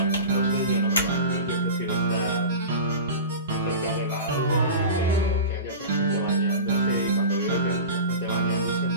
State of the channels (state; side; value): inverted; both; correlation -0.32